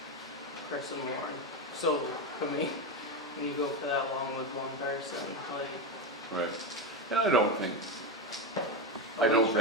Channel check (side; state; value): both; normal; correlation 0.13